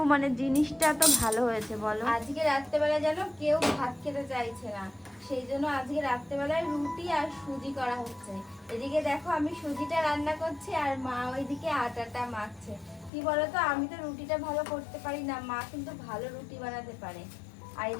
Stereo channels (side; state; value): right; drops out; at 13.1 s